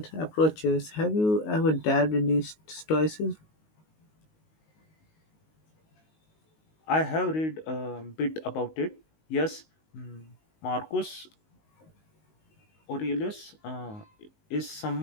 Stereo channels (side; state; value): right; late; 19 ms